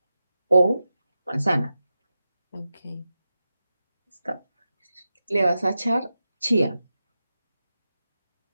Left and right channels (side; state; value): both; inverted; correlation -0.91